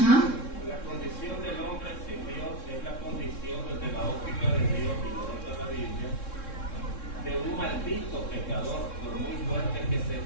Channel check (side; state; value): right; late; 3.7 ms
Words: La condición del hombre sin Dios es la condición desde la óptica de Dios y lo de la Biblia de un maldito pecador, por muy fuerte que se